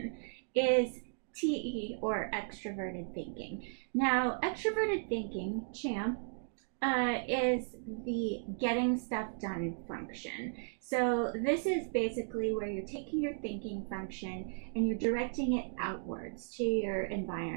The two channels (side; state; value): left; silent; digital silence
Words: is TE, or extroverted thinking. Now, extroverted thinking, Champ, is the getting stuff done function. So this is basically where you're taking your thinking function and you're directing it outwards to your